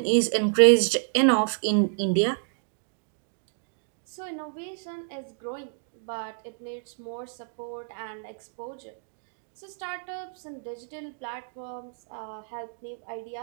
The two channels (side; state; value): left; silent; digital silence